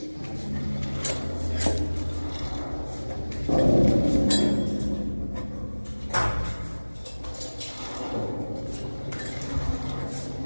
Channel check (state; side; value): inverted; both; correlation -1.00